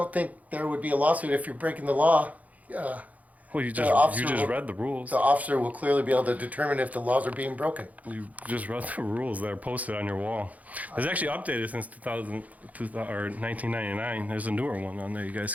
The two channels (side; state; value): left; late; 0.074 ms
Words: think there would be a lawsuit if you're breaking the law. Well, you officer just will- read the rules. The officer will clearly be able to determine if the laws are being broken. You just read the rules that are posted on your wall. It's actually updated since 1999. There's a newer one on there. You guys